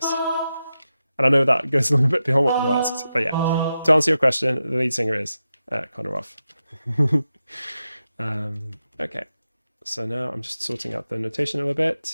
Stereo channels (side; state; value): both; inverted; correlation -0.90